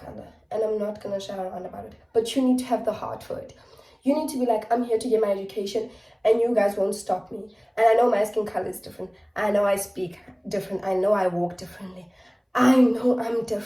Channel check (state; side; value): identical; both; correlation 1.00